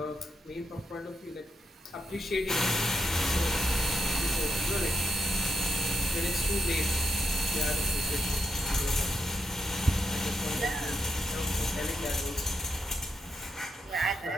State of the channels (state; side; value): normal; both; correlation 0.82